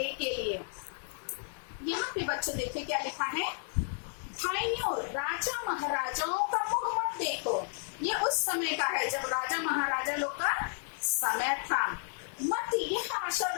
के लिए। यहाँ पे बच्चों देखिए क्या लिखा है, भाइयों राजा महाराजाओं का मुंह मत देखो। ये उस समय का है जब राजा महाराजा लोग का समय था। मत यह आशा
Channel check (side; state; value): right; silent; 56 dB below the other